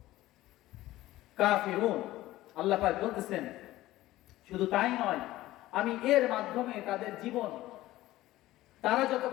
কাফিরুন, আল্লাহ পাক বলতেছেন শুধু তাই নয়, আমি এর মাধ্যমে তাদের জীবন, তারা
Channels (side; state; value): right; quieter; 16.2 dB